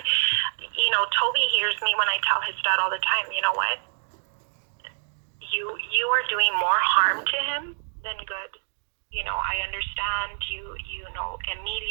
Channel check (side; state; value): left; silent; digital silence